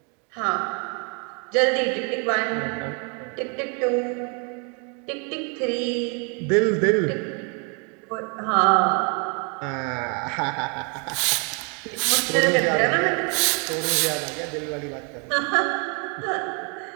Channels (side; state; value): left; quieter; 35.9 dB